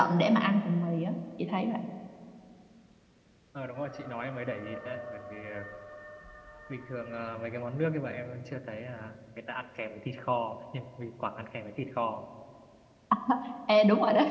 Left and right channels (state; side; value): identical; both; correlation 1.00